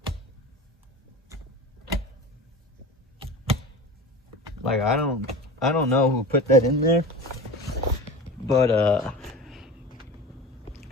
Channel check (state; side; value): normal; both; correlation 0.32